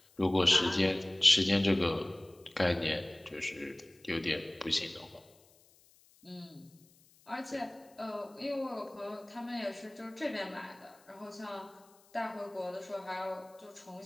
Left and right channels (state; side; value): noise; left; hiss, 29 dB below the sound